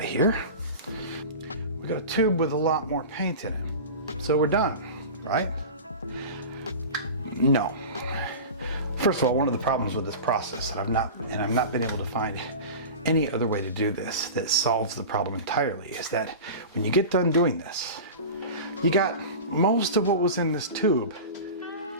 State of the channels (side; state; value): both; inverted; correlation -0.31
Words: here. We got a tube with a lot more paint in it. So we're done, right? No. First of all, one of the problems with this process, and I've not been able to find any other way to do this that solves the problem entirely, is that when you get done doing this, you got most of what was in this tube